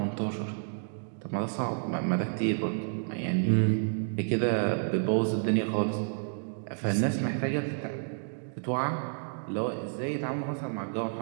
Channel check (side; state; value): left; silent; digital silence